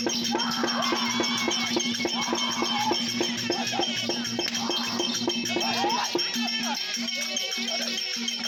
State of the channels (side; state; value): both; identical; correlation 1.00